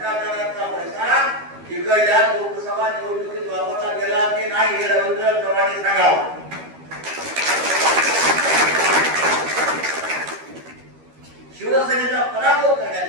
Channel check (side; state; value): left; late; 13 ms